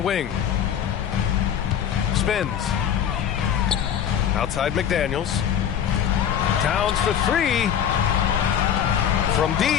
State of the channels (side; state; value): right; quieter; 9.0 dB